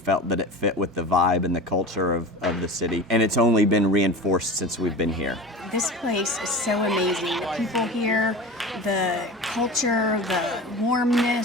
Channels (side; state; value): both; normal; correlation 0.32